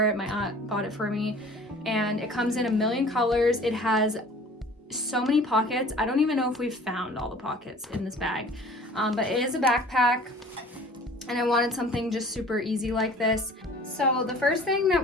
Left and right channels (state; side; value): normal; both; correlation 0.47